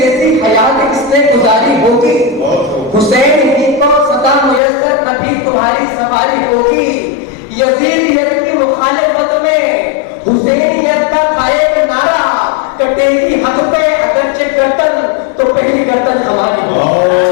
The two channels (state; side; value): drops out; right; at 4.6 s